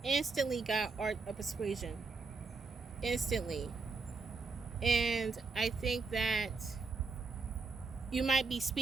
instantly got art of persuasion. Instantly. And I think that you might be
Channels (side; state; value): left; quieter; 4.3 dB